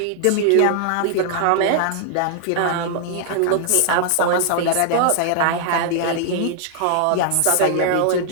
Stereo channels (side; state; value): both; different; correlation 0.00